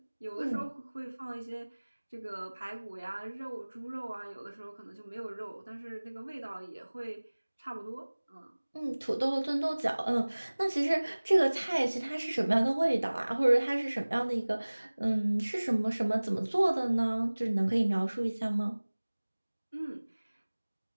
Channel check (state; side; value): inverted; both; correlation -1.00